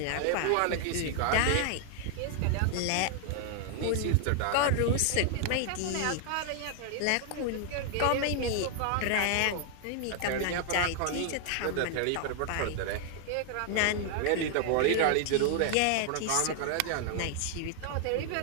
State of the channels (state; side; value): different; both; correlation 0.00